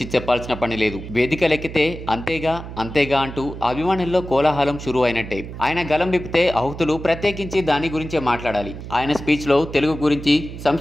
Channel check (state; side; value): noise; right; hum, 11 dB below the sound